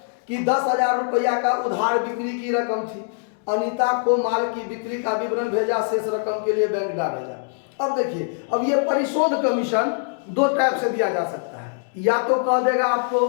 कि 10,000 रुपया का उधार बिक्री की रकम थी। अनीता को माल की बिक्री का विवरण भेजा, शेष रकम के लिए बैंक डाक भेजा। अब देखिए, अब ये परिशोध कमीशन 2 टाइप से दिया जा सकता है। या तो कह देगा आपको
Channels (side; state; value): right; silent; digital silence